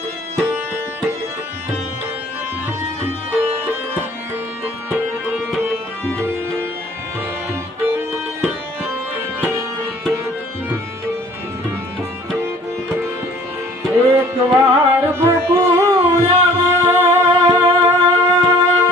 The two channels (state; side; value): normal; both; correlation 0.53